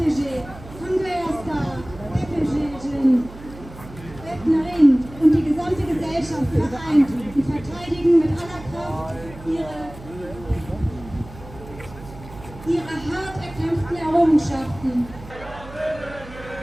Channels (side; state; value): right; noise; hum, 16 dB below the sound